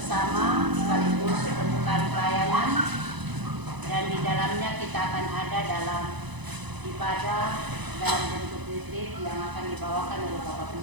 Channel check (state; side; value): late; left; 1.0 ms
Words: sekaligus pembukaan pelayanan, dan di dalamnya kita akan ada dalam ibadah dalam bentuk retreat yang akan dibawakan oleh Bapak